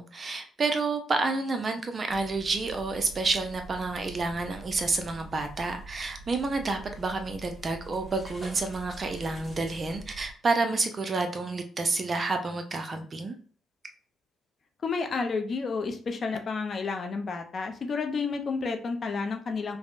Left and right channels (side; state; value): both; normal; correlation 0.80